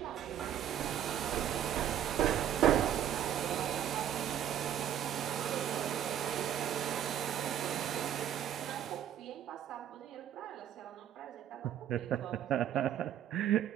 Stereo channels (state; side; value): quieter; left; 10.4 dB